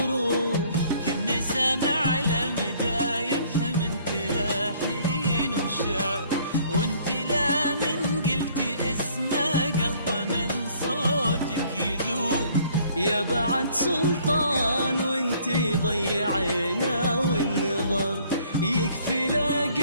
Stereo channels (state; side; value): inverted; both; correlation -0.59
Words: كني سامع لمدايح من تلاحين وشعر. وانت لا من قلتي اسمه قلبه من صوتك يذوب. يا بعد سلطان وانتي ضيعينا والنظر. يكفي لا